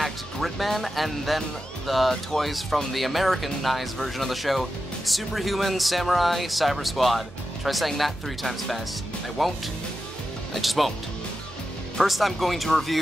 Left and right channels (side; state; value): both; normal; correlation 0.90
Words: Gridman, and then the toys from the Americanized version of the show, Superhuman Samurai Cyber Squad. Try saying that 3 times fast. I won't. I just won't. First, I'm going to